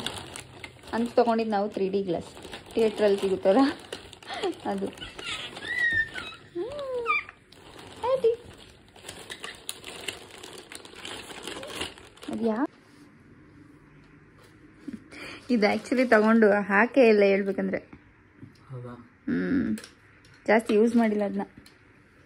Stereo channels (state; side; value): identical; both; correlation 1.00